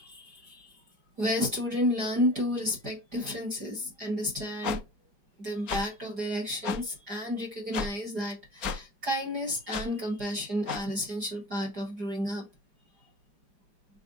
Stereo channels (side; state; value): left; late; 4.9 ms